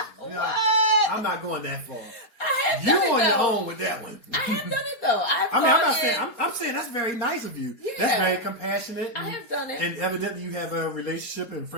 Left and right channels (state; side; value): late; right; 4.7 ms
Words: What? I'm not going that far. I have You done it, on though. your own with that one. I have done it though. I'm saying that's very nice of you. Yeah. That's very compassionate. I have done it. And evidently you have a relationship and